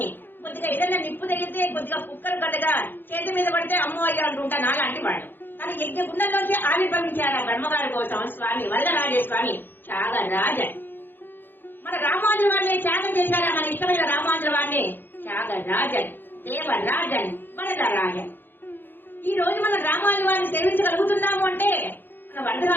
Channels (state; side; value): late; right; 0.096 ms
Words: కొద్దిగా ఏదైనా నిప్పు తగిలితే కొద్దిగా కుక్కలు కదగా చేతి మీద పడితే అమ్మో అయ్యా అంటుంటా నాలాంటి వాడు. కానీ యజ్ఞ గుండంలోంచి ఆవిర్భవించారా బ్రహ్మగారి కోసం స్వామి వరదరాజస్వామి త్యాగరాజన్. మన రామానుజుల వారిని త్యాగం చేశారా మన ఇష్టమైన రామానుజుల వారిని? త్యాగరాజన్, దేవరాజన్, వరదరాజన్. ఈ రోజు మన రామానుజుల వారిని సేవించగలుగుతున్నాము అంటే మన